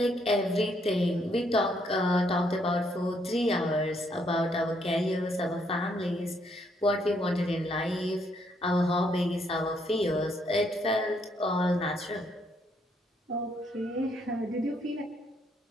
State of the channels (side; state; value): both; normal; correlation 0.72